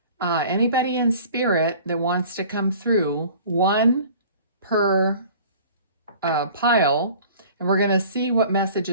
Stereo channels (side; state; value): both; inverted; correlation -0.46